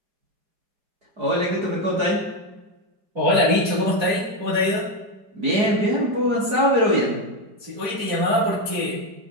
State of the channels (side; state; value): left; late; 4.9 ms